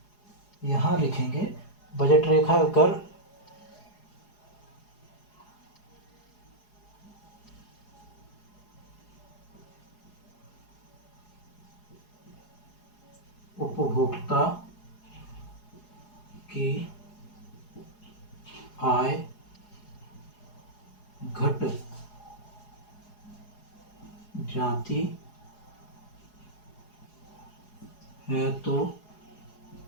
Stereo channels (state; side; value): late; right; 4.8 ms